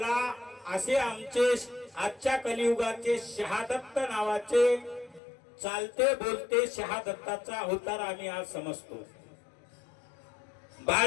असे आमचे आजच्या कलियुगाचे शहादत्त नावाचे चालते बोलते शहादत्ताचा अवतार आम्ही आज समजतो।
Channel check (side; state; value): right; drops out; at 5.2 s